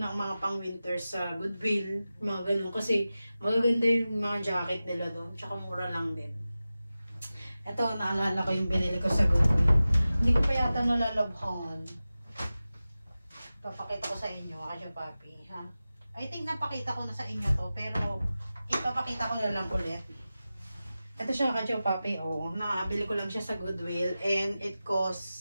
mga pang-winter sa Goodwill. Mga ganun. Kasi, magaganda yung mga jacket nila doon. Tsaka mura lang din. Ito, naalala ko yung binili ko sa Goodwill. Hindi ko pa yata nalalabhan. Papakita ko sa inyo, kachupapi. Ha? I think napakita ko na sa inyo to. Pero, ipapakita ko na lang ulit. Ito siya kachupapi, oh. Nakabili ko lang siya sa Goodwill and it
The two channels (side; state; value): both; inverted; correlation -0.95